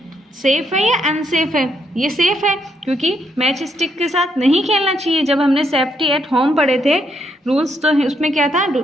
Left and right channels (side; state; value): both; normal; correlation 0.76